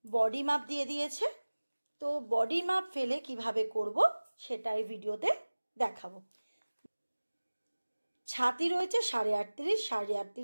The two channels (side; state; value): both; inverted; correlation -1.00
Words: বডি মাপ দিয়ে দিয়েছে, তো বডি মাপ ফেলে কিভাবে করব সেটা এই ভিডিওতে দেখাবো। ছাতি রয়েছে 38.5,